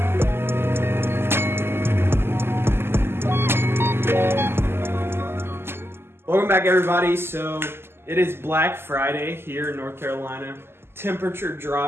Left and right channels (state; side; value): late; left; 0.12 ms